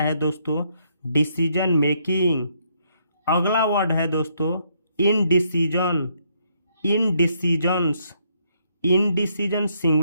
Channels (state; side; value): inverted; both; correlation -0.72